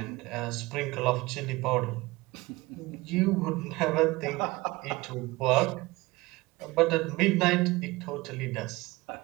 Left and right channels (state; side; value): quieter; left; 21.5 dB